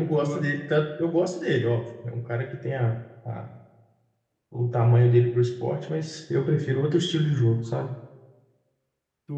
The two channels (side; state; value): both; identical; correlation 1.00